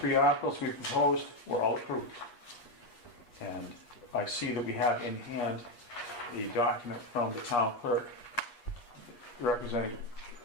articles we proposed were all approved. And I see that we have in hand the document from the town clerk representing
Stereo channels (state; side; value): late; right; 8.3 ms